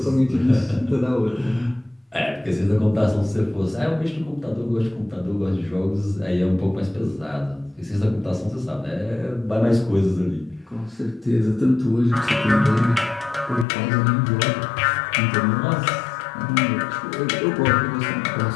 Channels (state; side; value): drops out; right; at 13.7 s